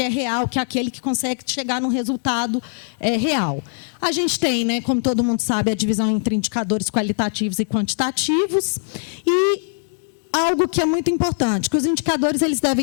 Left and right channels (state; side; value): silent; right; digital silence